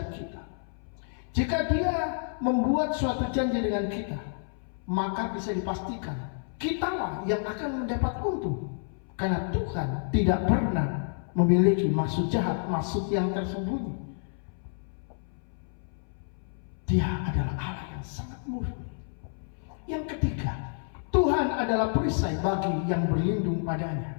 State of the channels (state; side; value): silent; right; 58 dB below the other